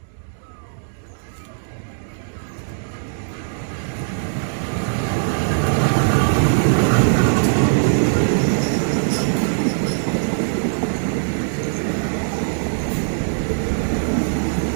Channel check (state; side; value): silent; left; digital silence